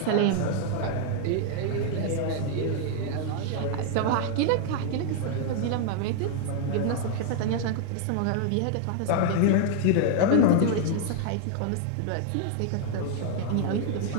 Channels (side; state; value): both; different; correlation 0.00